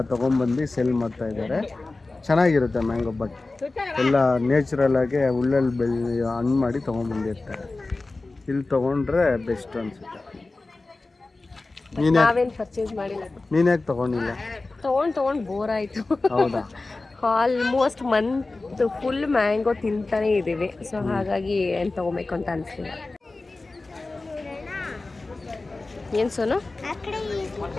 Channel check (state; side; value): quieter; right; 3.3 dB